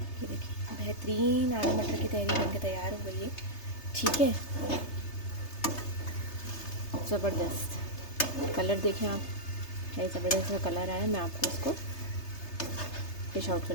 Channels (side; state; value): right; late; 3.3 ms